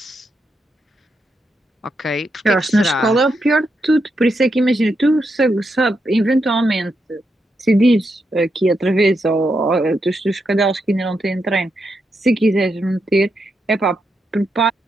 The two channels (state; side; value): normal; both; correlation 0.83